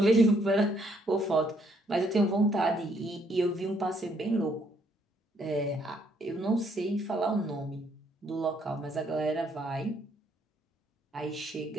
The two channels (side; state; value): both; normal; correlation 0.69